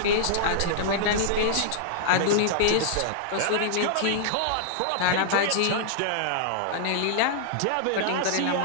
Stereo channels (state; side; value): different; both; correlation -0.01